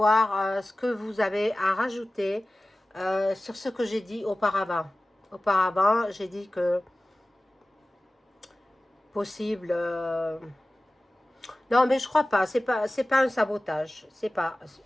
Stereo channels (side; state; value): both; normal; correlation 0.97